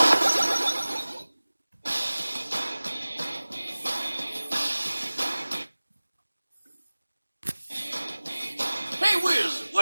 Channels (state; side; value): inverted; both; correlation -1.00